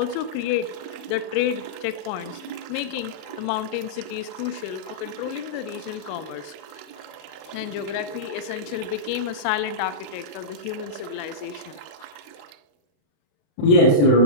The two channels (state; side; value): late; right; 35 ms